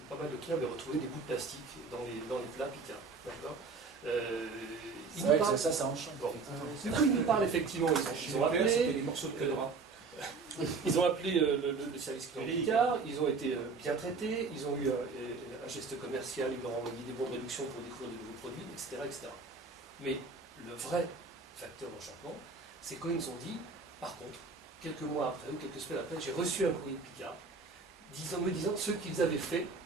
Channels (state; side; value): quieter; left; 4.4 dB